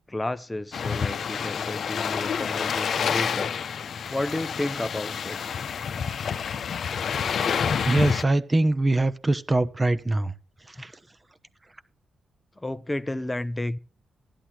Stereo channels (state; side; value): normal; both; correlation 0.90